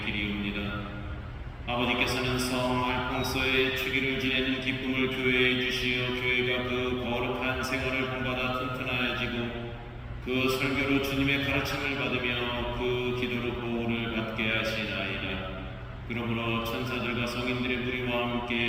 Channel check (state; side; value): identical; both; correlation 1.00